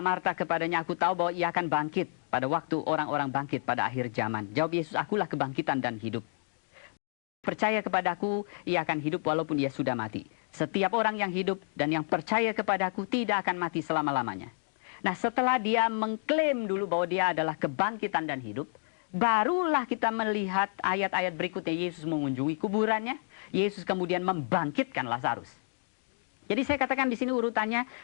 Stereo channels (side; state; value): right; silent; digital silence